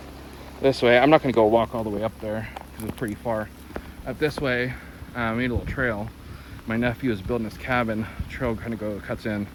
this way, I'm not going to go walk all the way up there because it's pretty far. Up this way, I made a little trail. My nephew is building his cabin. Trail kind of cuts in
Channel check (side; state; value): both; identical; correlation 1.00